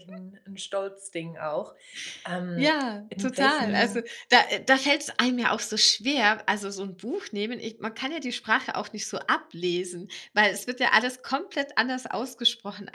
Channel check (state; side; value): identical; both; correlation 1.00